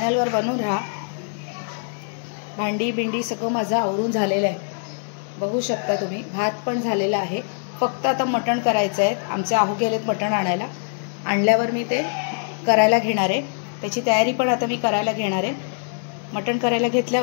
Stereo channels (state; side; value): silent; right; digital silence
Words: बनून राहा। भांडी बिंडी सगळं माझं आवरून झालेलं आहे, बघू शकता तुम्ही। भात पण झालेला आहे, फक्त आता मटण करायचं आहे। आमचे आहू गेलेत मटण आणायला, आणल्यावर मी ते करायला घेणार आहे। त्याची तयारी पण आता मी करायला घेणार आहे। मटण करायला